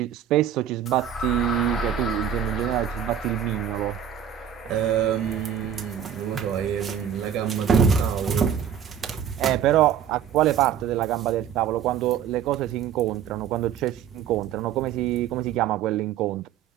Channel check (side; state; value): left; quieter; 9.0 dB